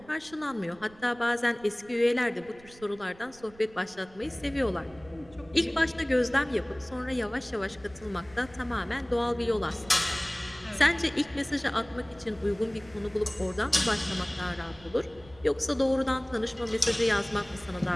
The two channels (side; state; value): right; noise; rumble, 24 dB below the sound